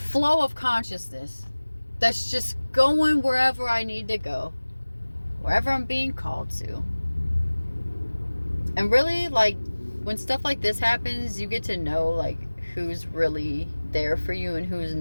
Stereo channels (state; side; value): inverted; both; correlation -1.00